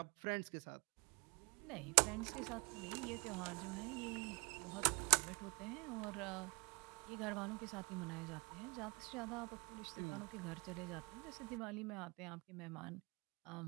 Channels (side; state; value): left; quieter; 30.2 dB